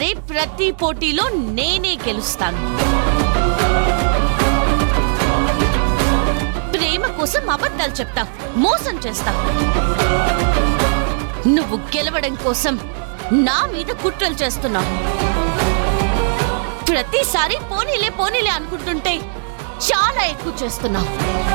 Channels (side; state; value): left; silent; digital silence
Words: ప్రతి పోటీలో నేనే గెలుస్తాను. ప్రేమ కోసం అబద్ధాలు చెప్తావు, మోసం చేస్తావు. నువ్వు గెలవడం కోసం నా మీద కుట్రలు చేస్తున్నావు. ప్రతిసారి పోనీలే పోనీలే అనుకుంటుంటే చాలా ఎక్కువ చేస్తున్నావు.